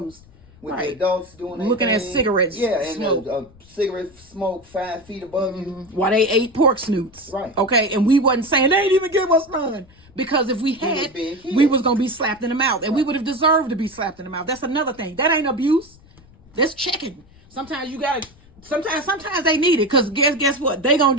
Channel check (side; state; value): left; noise; rumble, 26 dB below the sound